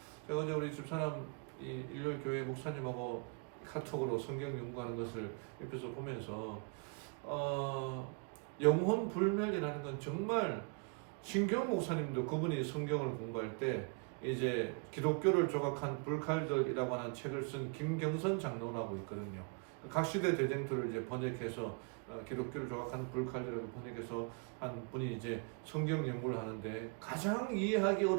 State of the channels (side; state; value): left; quieter; 36.5 dB